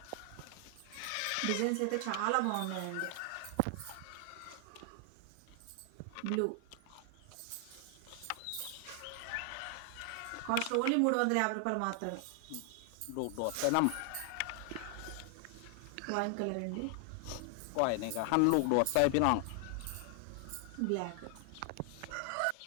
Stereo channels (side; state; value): both; different; correlation 0.00